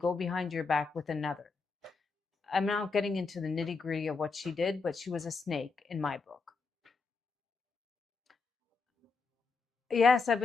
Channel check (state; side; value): quieter; right; 4.4 dB